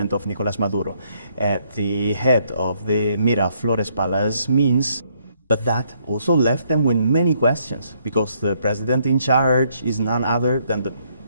of Nicolás Maduro at the head of the Miraflores Palace means. But that also left them with many questions, because the president in charge is none other than the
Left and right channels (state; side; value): inverted; both; correlation -0.70